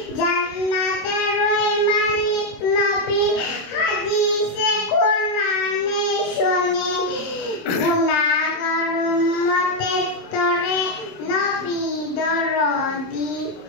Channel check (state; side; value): late; right; 26 ms